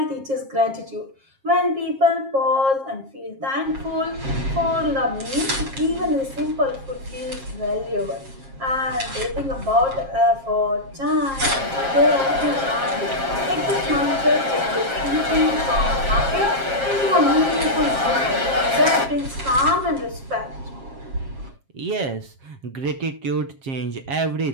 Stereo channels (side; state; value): left; late; 7.4 ms